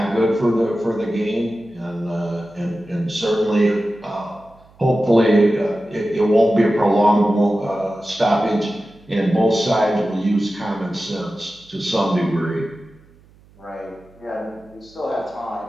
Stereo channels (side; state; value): right; noise; hum, 28 dB below the sound